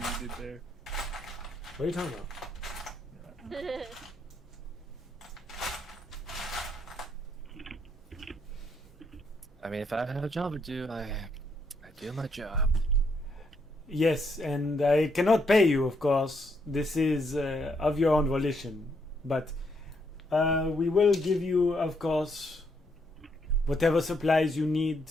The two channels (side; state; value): both; normal; correlation 0.75